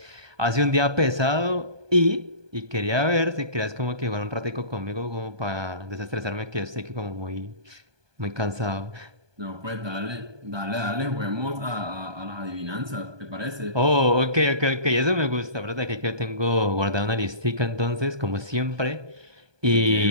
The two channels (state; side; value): late; left; 1.2 ms